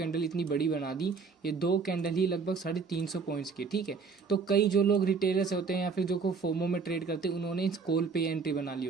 इतनी बड़ी बना दी। ये 2 कैंडल ही लगभग 350 पॉइंट्स की। ठीक है, तो कई जो लोग रिटेलर्स होते हैं या फिर जो को फोमो में ट्रेड करते हैं, उन्होंने इस कॉल पे एंट्री बना ली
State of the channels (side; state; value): left; quieter; 5.1 dB